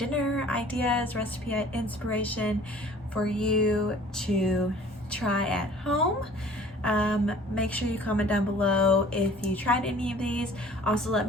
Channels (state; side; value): normal; both; correlation 0.50